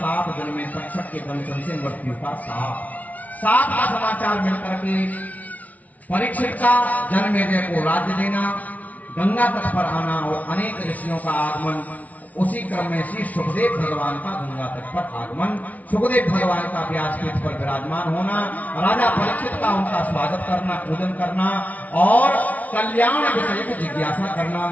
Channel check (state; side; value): late; right; 0.073 ms